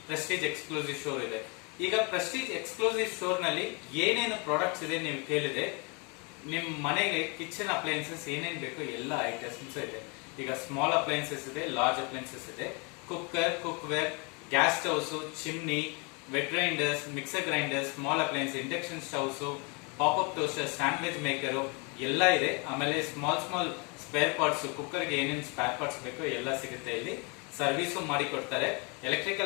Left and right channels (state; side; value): quieter; right; 31.8 dB